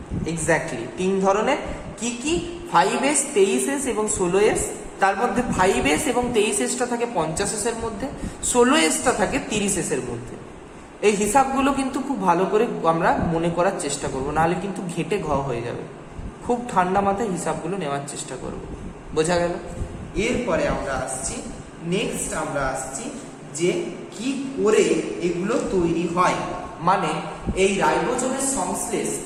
এক্স্যাক্টলি 3 ধরনের। কি কি? 5S, 23S এবং 16S। তার মধ্যে 5S এবং 23Sটা থাকে 50S এর মধ্যে, 16Sটা থাকে 30S এর মধ্যে। এই হিসাবগুলো কিন্তু খুব ভালো করে আমরা মনে করার চেষ্টা করব, নাহলে কিন্তু ঘেটে ঘ হয়ে যাবে। খুব ঠান্ডা মাথায় হিসাবগুলো নেওয়ার চেষ্টা করব। বোঝা গেল? এরপরে আমরা আসছি যে কি করে এগুলো তৈরি হয়, মানে এই রাইবোজোমের সংশ্লেষ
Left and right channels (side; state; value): both; identical; correlation 1.00